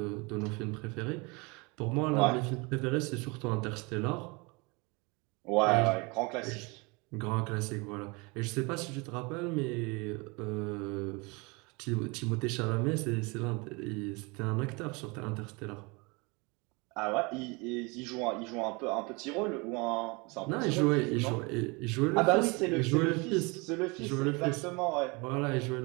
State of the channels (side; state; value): left; quieter; 28.1 dB